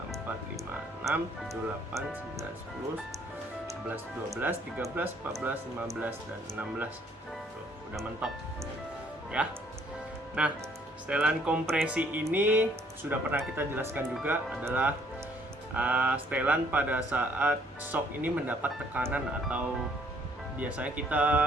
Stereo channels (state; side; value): normal; both; correlation 0.64